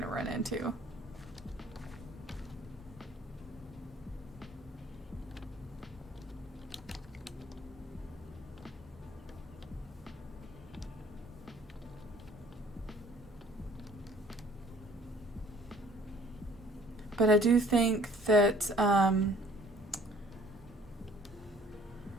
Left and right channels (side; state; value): both; normal; correlation 0.56